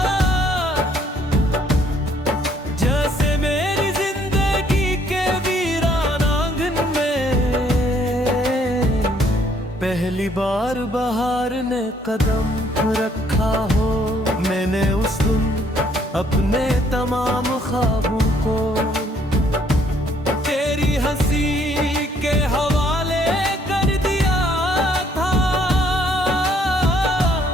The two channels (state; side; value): normal; both; correlation 0.65